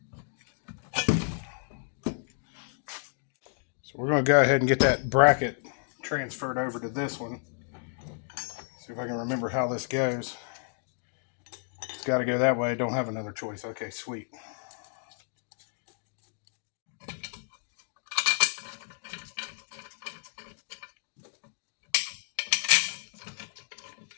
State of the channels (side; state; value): right; silent; 57 dB below the other